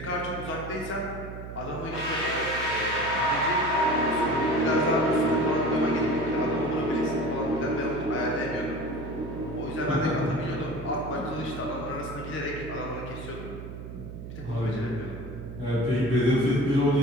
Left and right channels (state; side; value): noise; right; hum, 10 dB below the sound